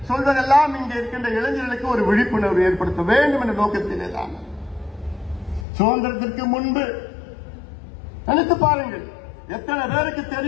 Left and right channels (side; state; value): right; drops out; at 5.7 s